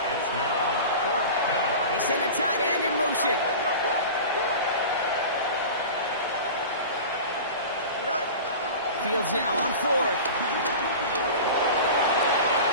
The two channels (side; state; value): both; inverted; correlation -0.34